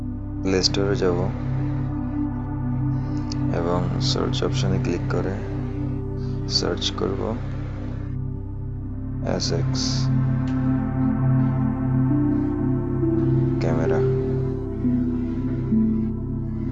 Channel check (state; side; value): identical; both; correlation 1.00